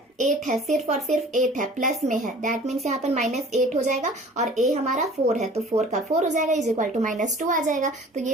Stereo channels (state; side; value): normal; both; correlation 0.47